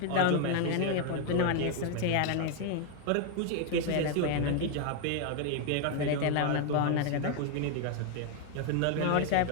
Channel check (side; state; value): both; different; correlation 0.01